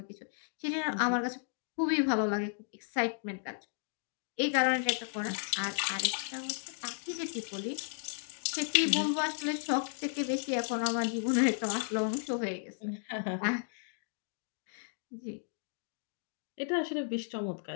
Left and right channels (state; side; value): silent; right; digital silence